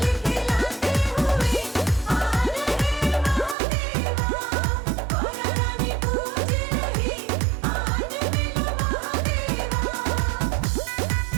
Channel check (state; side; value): drops out; left; at 3.6 s